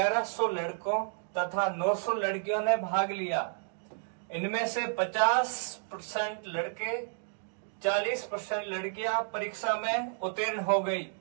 लड़कों तथा 900 लड़कियों ने भाग लिया। इनमें से 50% लड़के 40% लड़कियां परीक्षा में उत्तीर्ण हो गई।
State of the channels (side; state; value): left; silent; digital silence